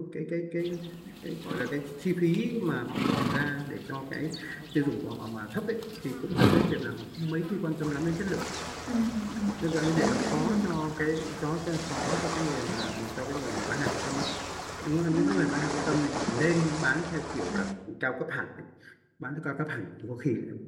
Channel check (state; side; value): identical; both; correlation 1.00